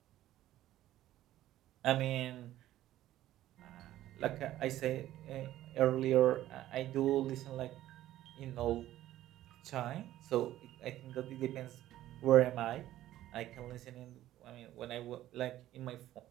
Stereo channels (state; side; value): quieter; left; 13.9 dB